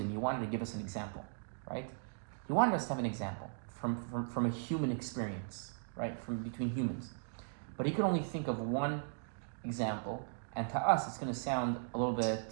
he wanted to give us an example, right? He wanted us to have an example from a human experience, right? From between humans. But he could only think of one example, and to us it's going to sound a little bit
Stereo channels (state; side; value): silent; left; digital silence